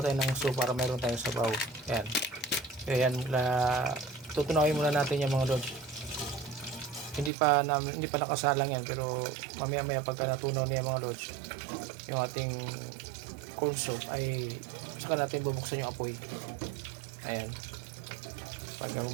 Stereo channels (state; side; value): drops out; left; at 7.3 s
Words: tayo ng soup para meron tayong sabaw. Ayan. Ayan, tutunawin muna natin yung mga lods. Hindi pa nakasalang yan, pero mamaya pagka natunaw niya mga lods, yung ating corn soup, ay saka natin bubuksan yung apoy. Ayan. Pag